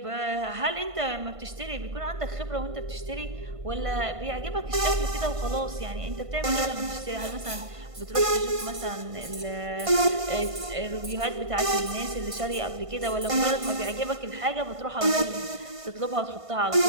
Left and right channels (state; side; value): late; left; 1.5 ms